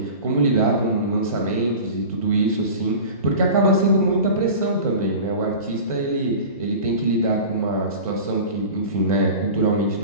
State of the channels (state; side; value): inverted; both; correlation -0.35